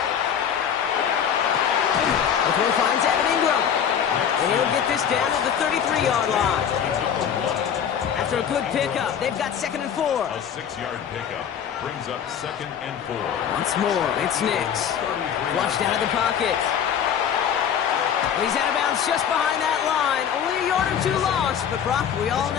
The throw finds Evan Ingram. And he'll get this down at the 33-yard line. After a good pickup, they've got 2nd and 4. A 6-yard pickup brings up 2nd and 4. Once more, it's Nix. Flushed out of the pocket. He's out of bounds just behind that line. Only a yard or 2 lost, but Brock, we all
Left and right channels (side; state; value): right; quieter; 8.4 dB